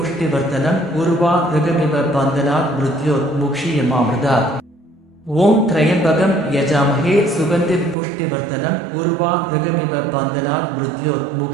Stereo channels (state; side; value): drops out; left; at 8.0 s